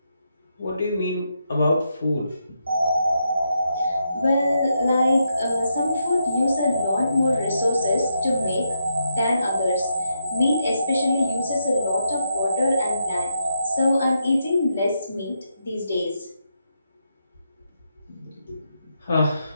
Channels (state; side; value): inverted; both; correlation -0.81